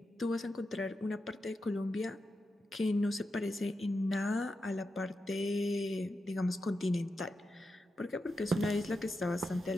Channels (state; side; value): normal; both; correlation 0.88